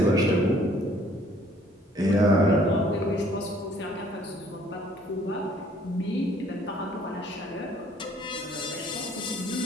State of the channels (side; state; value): both; normal; correlation 0.59